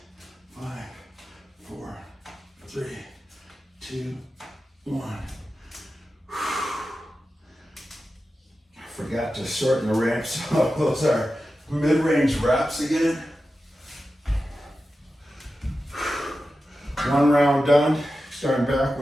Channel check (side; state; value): both; normal; correlation 0.92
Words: 5, 4, 3, 2, 1. Forgot to shorten the reps. So those are mid-range reps again. One round done. Starting back